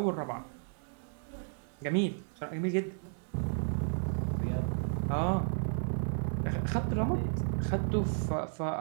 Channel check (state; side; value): silent; left; 56 dB below the other